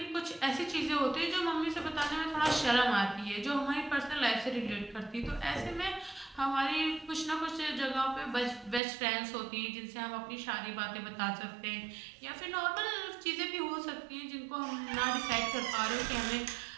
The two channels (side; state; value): left; drops out; at 8.8 s